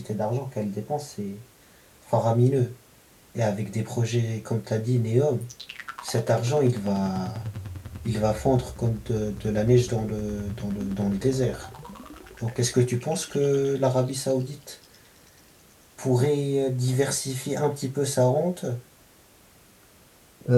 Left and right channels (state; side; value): identical; both; correlation 1.00